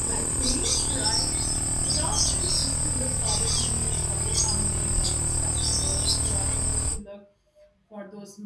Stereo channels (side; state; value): both; identical; correlation 1.00